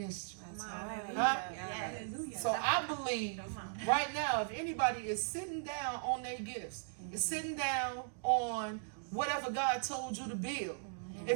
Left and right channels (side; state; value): left; silent; digital silence